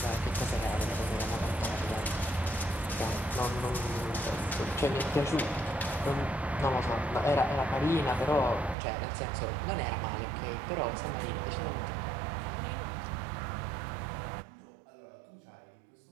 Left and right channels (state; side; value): drops out; left; at 8.8 s